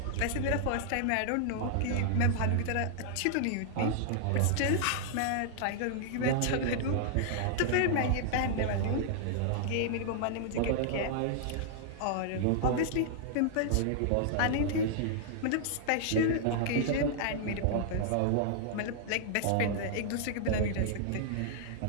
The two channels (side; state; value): both; different; correlation -0.01